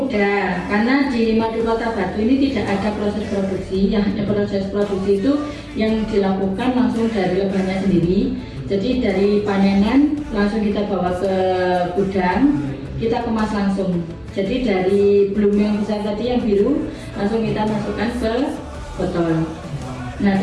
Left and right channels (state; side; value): identical; both; correlation 1.00